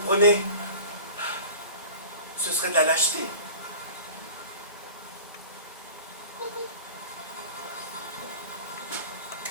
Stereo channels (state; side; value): inverted; both; correlation -0.40